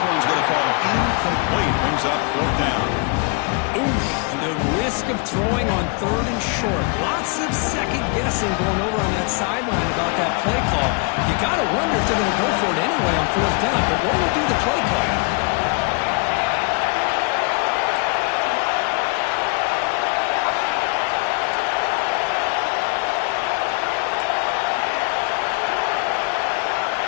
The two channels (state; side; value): quieter; right; 32.9 dB